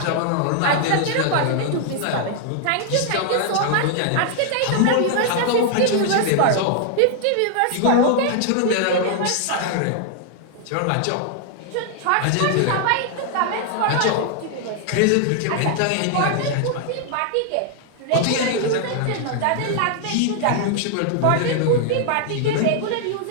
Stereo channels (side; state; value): both; different; correlation 0.00